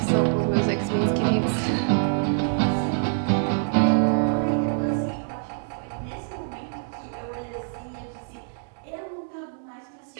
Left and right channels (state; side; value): silent; left; digital silence